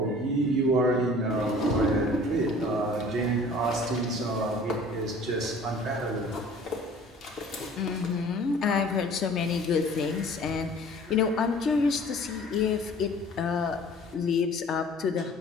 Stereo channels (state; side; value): normal; both; correlation 0.49